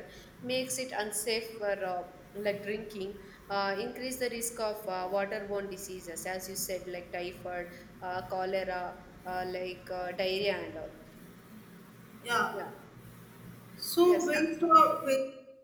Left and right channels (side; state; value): both; identical; correlation 1.00